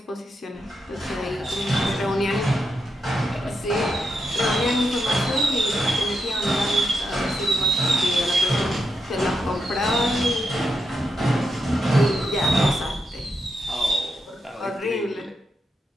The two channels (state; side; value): normal; both; correlation 0.84